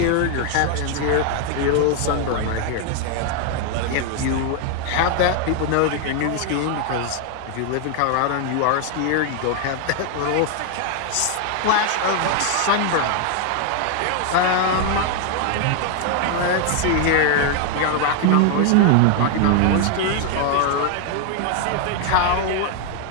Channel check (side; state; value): both; different; correlation 0.01